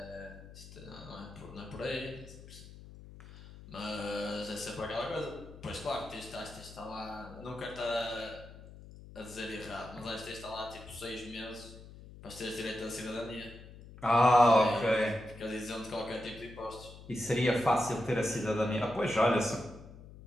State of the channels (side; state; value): left; noise; hum, 17 dB below the sound